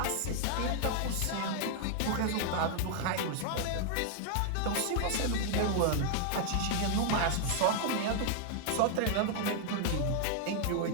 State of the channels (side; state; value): both; different; correlation 0.00